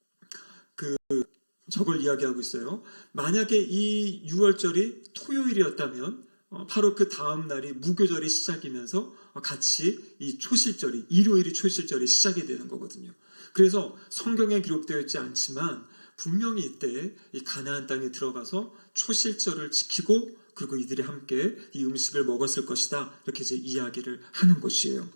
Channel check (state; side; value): inverted; both; correlation -1.00